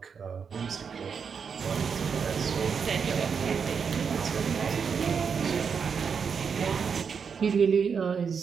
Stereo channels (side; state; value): left; quieter; 6.3 dB